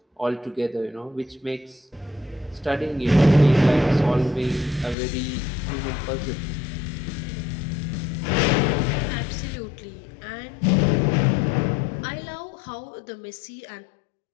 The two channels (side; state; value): right; drops out; at 5.0 s